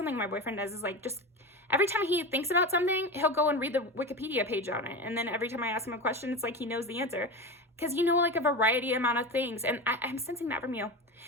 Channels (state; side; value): normal; both; correlation 0.25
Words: my boyfriend does, is like just every time he thinks about something, he'll go and read the Wikipedia page on it, and then every time I ask him a question, it's like he knows the answer, because like a variety amount of things, and I'm sensing that from you,